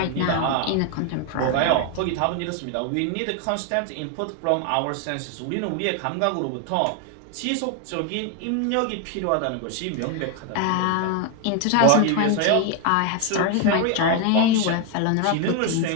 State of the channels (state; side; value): different; both; correlation 0.01